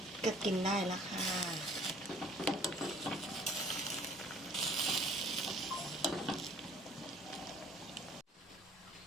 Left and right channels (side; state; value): both; normal; correlation 0.53